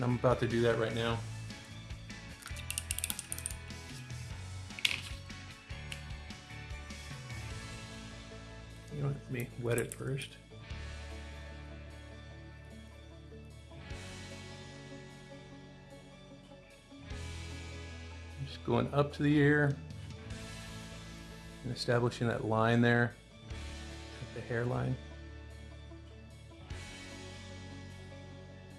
I'm about to do that right now. You know, let me wet it first. Just going up to the ear and establishing that line there at the hairline.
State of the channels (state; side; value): identical; both; correlation 1.00